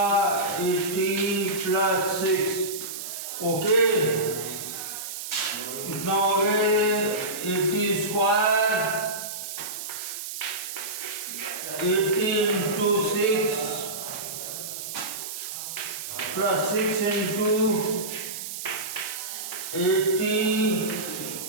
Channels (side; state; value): right; noise; hiss, 7 dB below the sound